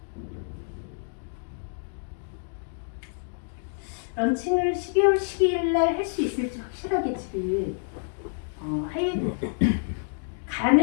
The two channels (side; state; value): right; silent; digital silence